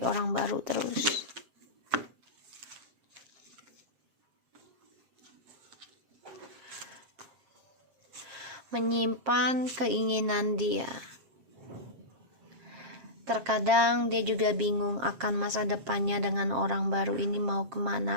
orang baru terus. Menyimpan keinginan dia. Terkadang dia juga bingung akan masa depannya dengan orang baru ini mau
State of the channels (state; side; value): late; left; 7.4 ms